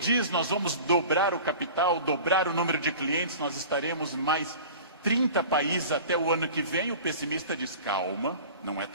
nós vamos dobrar o capital, dobrar o número de clientes, nós estaremos em mais 30 países até o ano que vem, o pessimista diz: calma, não é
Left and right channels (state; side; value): inverted; both; correlation -0.39